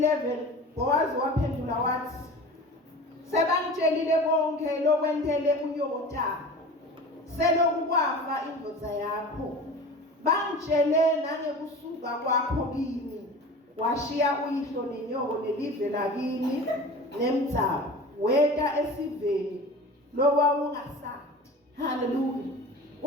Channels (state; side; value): normal; both; correlation 0.37